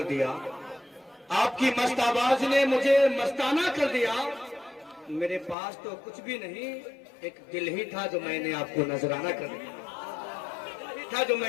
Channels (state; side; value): drops out; right; at 5.6 s